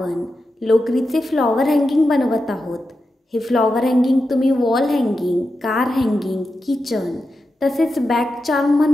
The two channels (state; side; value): normal; both; correlation 0.89